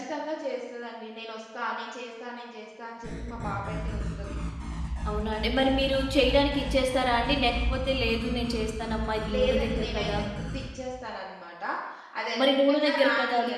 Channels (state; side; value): identical; both; correlation 1.00